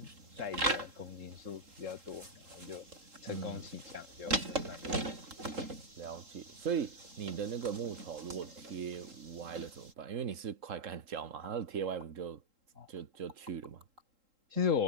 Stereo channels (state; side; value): late; left; 3.7 ms